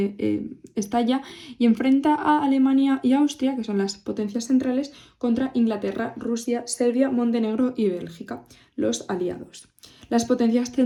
estalla y enfrenta a Alemania y Austria, que son las potencias centrales, contra Inglaterra, Rusia, Serbia, Montenegro y Bélgica, los aliados. Las potencias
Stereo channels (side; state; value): both; identical; correlation 1.00